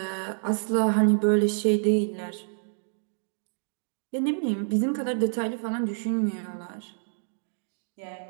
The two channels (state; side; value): silent; left; digital silence